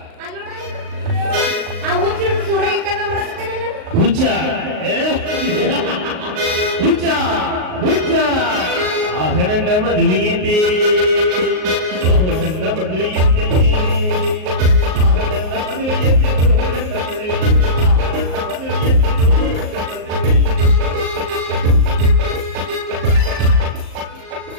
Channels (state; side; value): late; left; 38 ms